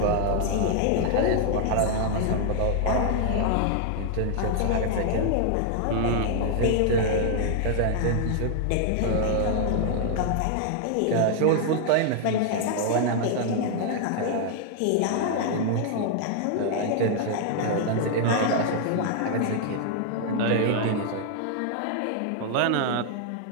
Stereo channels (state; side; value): different; both; correlation 0.00